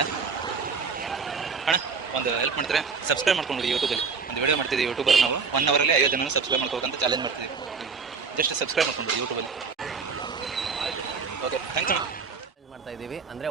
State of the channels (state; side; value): quieter; left; 5.3 dB